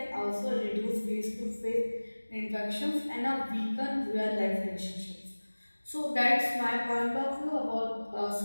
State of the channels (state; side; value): inverted; both; correlation -1.00